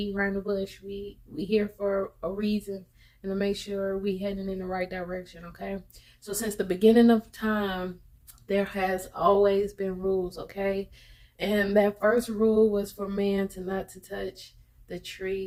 around the bush. We here for a reason and to make sure we heading in the right direction, okay? So since the beginning of time, there has always been rules, okay? And that first rule was for man to not to touch the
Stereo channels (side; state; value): both; identical; correlation 1.00